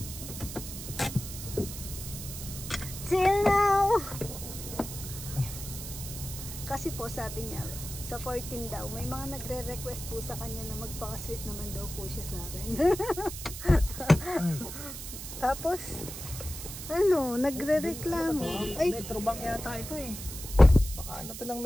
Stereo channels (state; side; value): noise; right; hiss, 9 dB below the sound